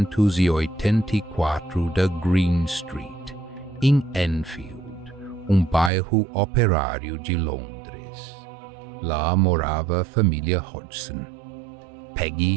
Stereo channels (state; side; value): drops out; left; at 5.9 s